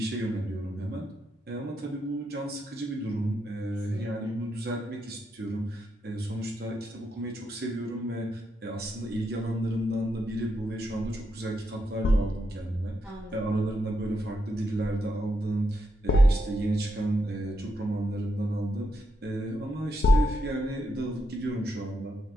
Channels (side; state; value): both; normal; correlation 0.82